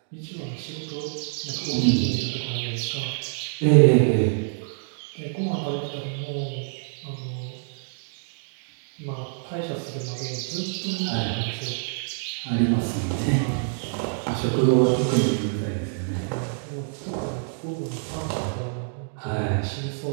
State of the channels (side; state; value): left; silent; digital silence